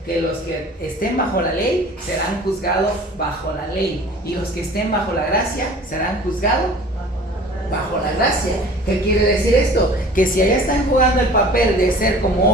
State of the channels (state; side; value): normal; both; correlation 0.45